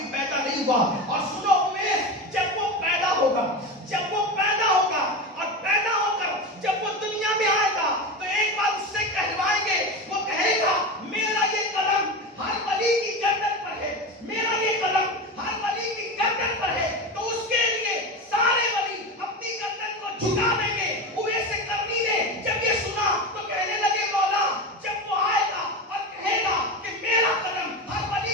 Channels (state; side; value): normal; both; correlation 0.22